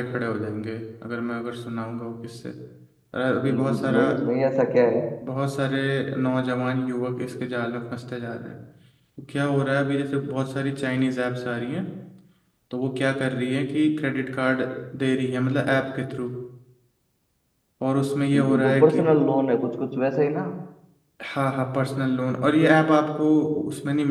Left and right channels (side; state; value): both; identical; correlation 1.00